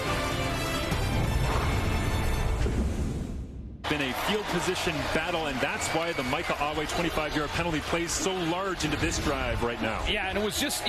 Been a field position battle, and that's why the Micah Awe 25-yard penalty plays so large into this drive right now. Yeah, and it was just,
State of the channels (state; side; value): identical; both; correlation 1.00